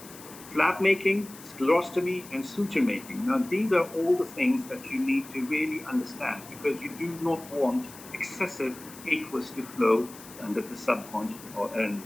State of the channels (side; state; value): left; noise; hiss, 17 dB below the sound